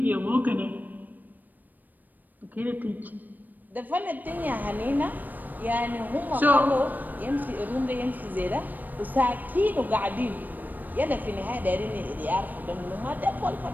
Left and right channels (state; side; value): late; left; 0.087 ms